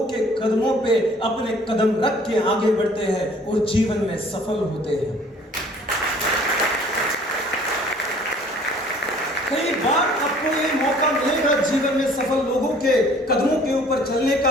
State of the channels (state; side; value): normal; both; correlation 0.53